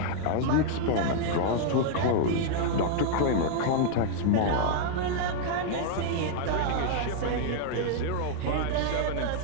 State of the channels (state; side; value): different; both; correlation -0.01